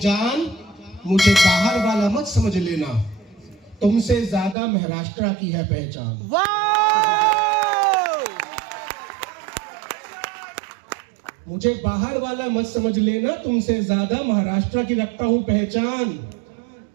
मुझे बाहर वाला मत समझ लेना, तुमसे ज्यादा महाराष्ट्र की है पहचान। मुझे बाहर वाला मत समझ लेना, तुमसे ज्यादा महाराष्ट्र की रखता हूं पहचान।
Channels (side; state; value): left; drops out; at 4.5 s